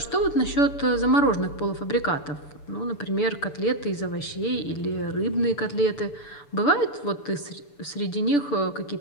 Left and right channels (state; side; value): late; right; 6.9 ms